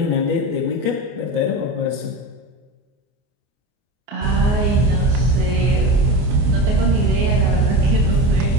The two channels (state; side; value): late; left; 24 ms